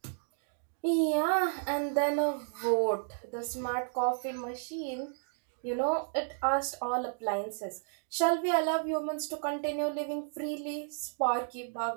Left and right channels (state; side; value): silent; left; digital silence